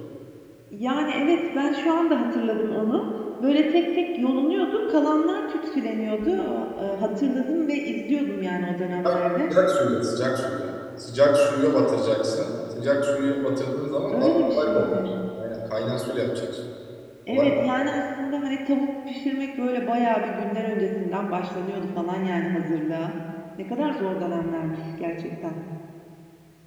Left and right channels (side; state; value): both; identical; correlation 1.00